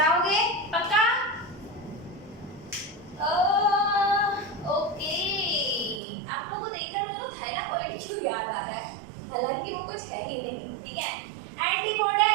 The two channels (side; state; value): left; drops out; at 6.0 s